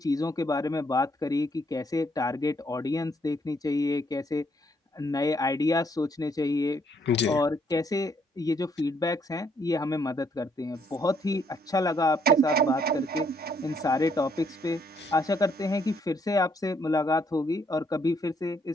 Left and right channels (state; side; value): normal; both; correlation 0.70